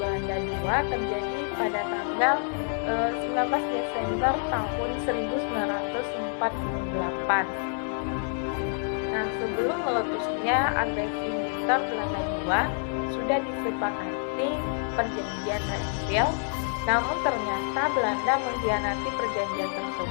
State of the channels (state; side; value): silent; right; 57 dB below the other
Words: II terjadi pada tanggal 19 Desember tahun 1948. Nah, sebelum meletusnya agresi militer Belanda II sudah disepakati perjanjian Plainfield. Namun ternyata Belanda mengkhianati perjanjian